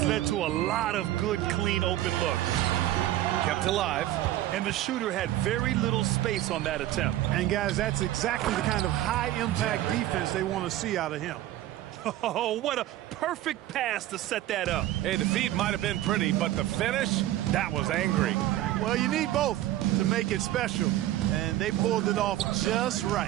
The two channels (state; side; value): quieter; left; 14.3 dB